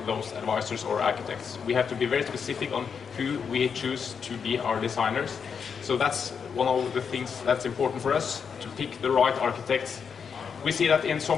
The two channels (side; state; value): right; quieter; 6.5 dB